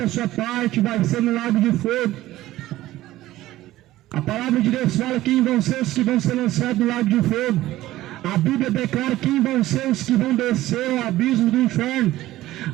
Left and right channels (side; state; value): left; quieter; 15.6 dB